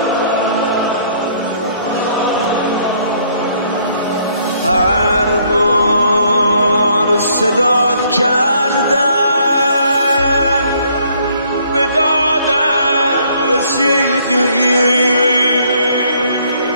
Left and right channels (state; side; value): inverted; both; correlation -0.65